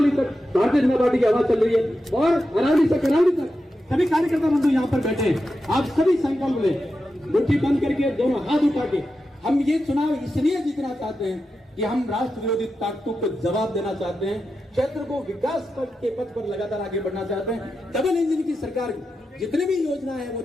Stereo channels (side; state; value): both; normal; correlation 0.89